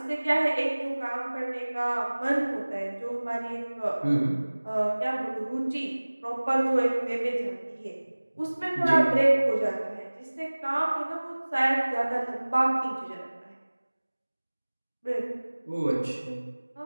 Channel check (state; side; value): inverted; both; correlation -1.00